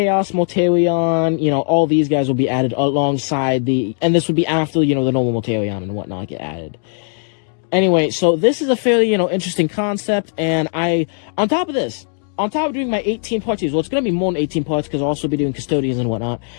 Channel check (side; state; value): right; silent; digital silence